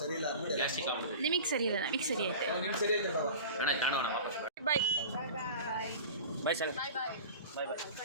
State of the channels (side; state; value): both; inverted; correlation -0.36